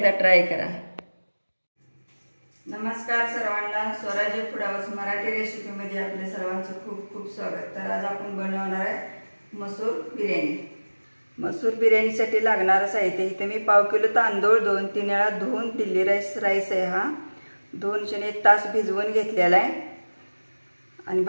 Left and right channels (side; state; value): both; inverted; correlation -1.00